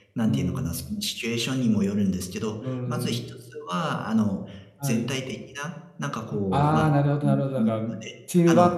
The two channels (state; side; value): identical; both; correlation 1.00